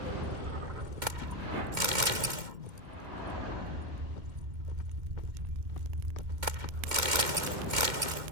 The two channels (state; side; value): late; left; 2.1 ms